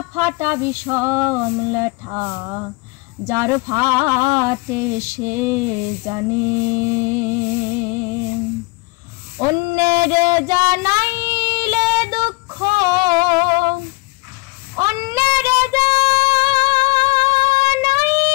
ফাটা বিষম লেঠা, যার ফাটে সে জানে। অন্যের জানাইলে দুঃখ, অন্যের জানাইলে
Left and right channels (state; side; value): quieter; right; 24.5 dB